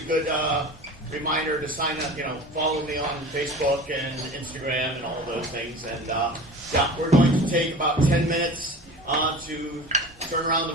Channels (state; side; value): normal; both; correlation 0.37